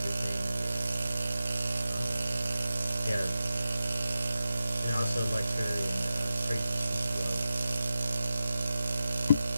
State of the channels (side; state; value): both; inverted; correlation -0.91